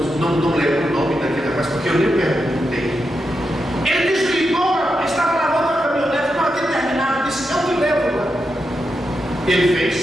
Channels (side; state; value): both; normal; correlation 0.86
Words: não lembro o nome daquele rapaz, porque eu nem perguntei. Ele desligou, estava lavando a caminhonete, não havia terminado, disse: eu te levo lá. Ele fez